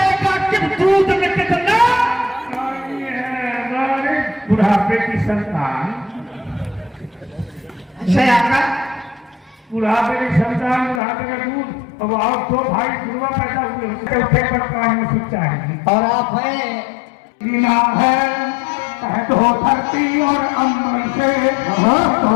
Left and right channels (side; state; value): right; drops out; at 11.0 s